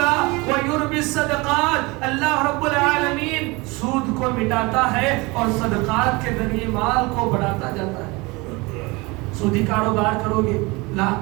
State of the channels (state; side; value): quieter; left; 24.8 dB